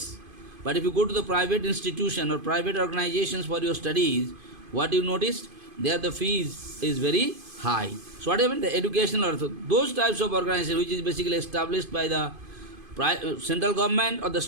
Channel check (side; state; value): left; late; 2.5 ms